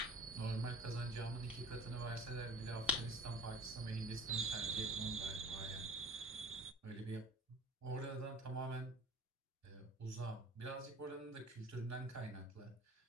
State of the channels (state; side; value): normal; both; correlation 0.43